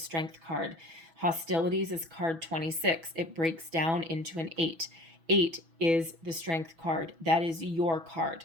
card. Hostilities is card 26. It breaks down into an 8. 8 is the Strength card. That is your card.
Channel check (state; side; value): late; left; 6.1 ms